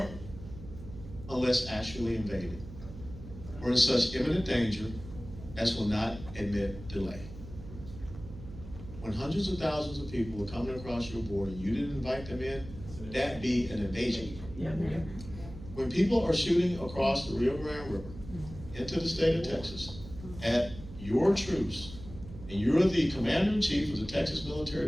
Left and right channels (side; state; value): right; noise; hum, 14 dB below the sound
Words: unless actually invaded, or in such imminent danger as will not admit delay. When hundreds of thousands of people are coming across your border and you didn't invite them in, that be an invasion. When people are shooting across the Rio Grande River into the state of Texas at your troops, and you're the commander-in-chief of the Texas